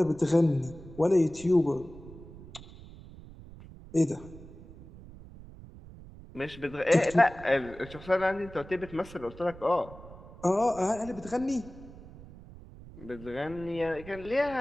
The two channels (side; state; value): right; noise; rumble, 17 dB below the sound